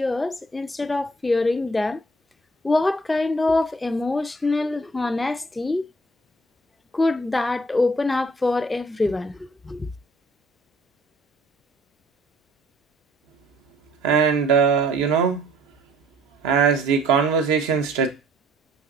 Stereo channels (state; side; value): normal; both; correlation 0.60